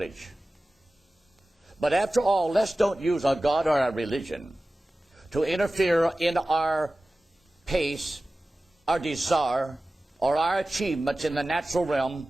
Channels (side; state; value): both; normal; correlation 0.96